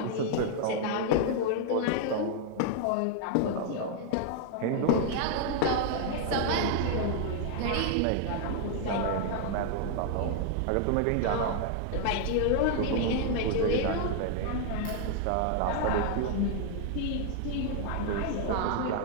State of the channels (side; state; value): both; different; correlation 0.00